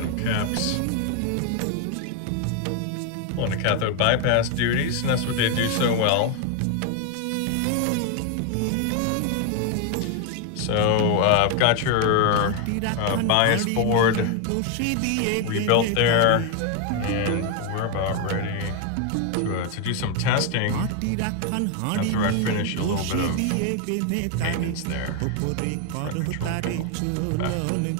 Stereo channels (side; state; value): both; different; correlation 0.01